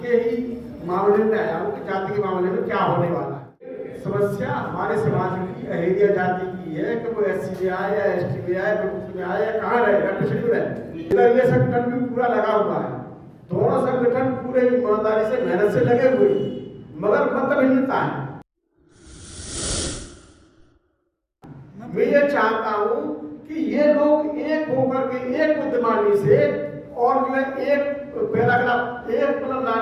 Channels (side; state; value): both; identical; correlation 1.00